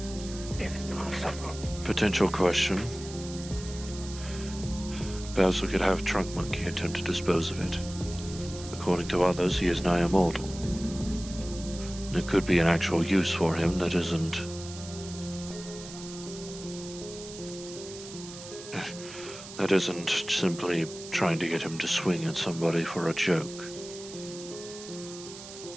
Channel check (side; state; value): right; noise; hiss, 13 dB below the sound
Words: if possible. Potential question. Perhaps we could have Trunk Monkey attempt to dispose of it. According to others, he is nigh immortal. There could be an actual use for him that isn't... that isn't simply trying to get him to swing at somebody for a joke.